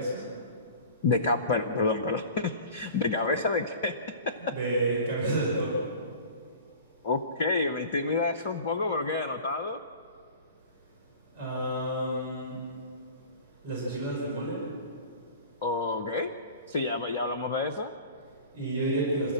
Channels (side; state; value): both; inverted; correlation -0.40